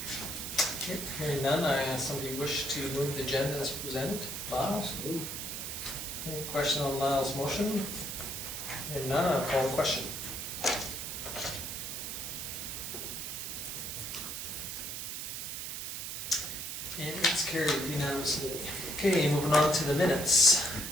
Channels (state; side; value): noise; right; hiss, 5 dB below the sound